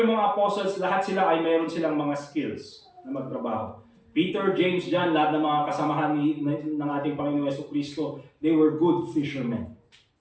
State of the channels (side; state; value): both; identical; correlation 1.00